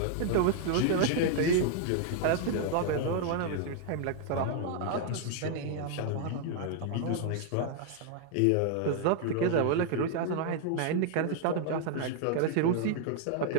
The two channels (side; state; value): both; different; correlation 0.00